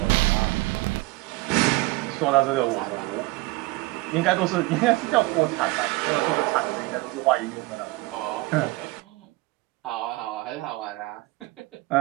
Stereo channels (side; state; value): left; quieter; 22.0 dB